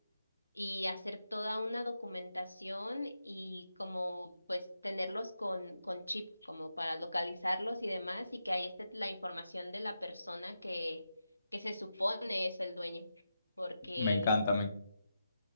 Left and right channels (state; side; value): inverted; both; correlation -0.87